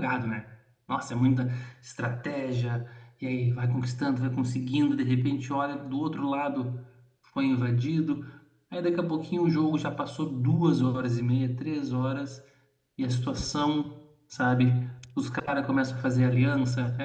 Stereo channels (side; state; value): both; identical; correlation 1.00